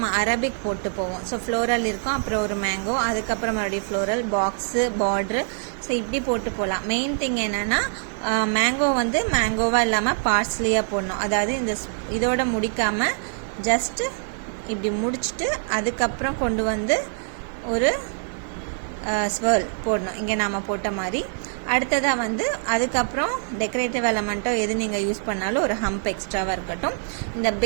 அரபிக் போட்டு போவோம். ஸோ ஃப்ளோரல் இருக்கும், அப்புறம் ஒரு மேங்கோ, அதுக்கப்புறம் மறுபடியும் ஃப்ளோரல், பாக்ஸு, பார்ட்ரு, ஸோ இப்படி போட்டு போகலாம். மெயின் திங் என்னென்னா மேங்கோ வந்து மேங்கோவாக இல்லாமல் பார்ஸ்லியாக போடணும். அதாவது இதோட முடிக்காமல் ஜஸ்ட்டு இப்படி முடிச்சுட்டு அதுக்கப்புறம் கொண்டு வந்து ஒரு ஸ்வர்ல் போடணும், இங்கே நாம் போட்ட மாதிரி. அடுத்ததாக வந்து அதுக்கப்புறம் டெக்கரேட்டிவ் எலமெண்ட்டோ எது நீங்கள் யூஸ் பண்ணாலும் ஒரு ஹம்ப் எக்ஸ்ட்ராவாக இருக்கட்டும். இந்த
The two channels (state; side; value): silent; left; 60 dB below the other